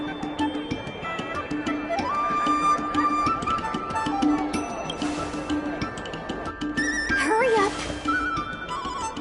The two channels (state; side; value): identical; both; correlation 1.00